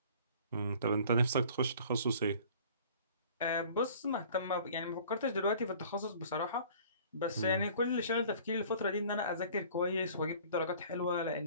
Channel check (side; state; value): both; inverted; correlation -0.50